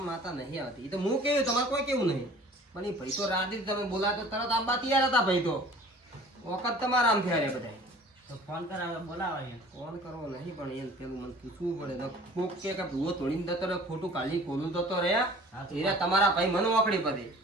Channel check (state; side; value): normal; both; correlation 0.48